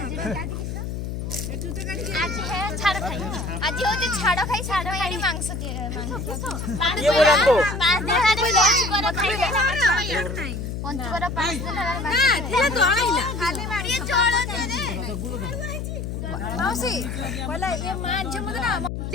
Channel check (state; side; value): noise; left; hum, 5 dB below the sound